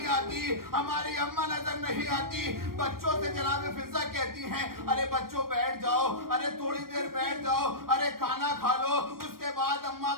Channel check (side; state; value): left; late; 0.93 ms